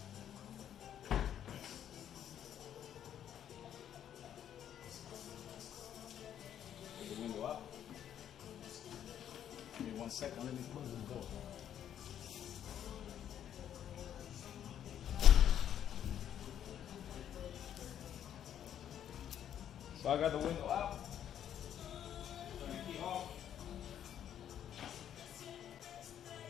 Put the window up. Give me 1 second, let me close the door. So I got the window up. Turn the key off.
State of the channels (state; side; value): quieter; right; 10.0 dB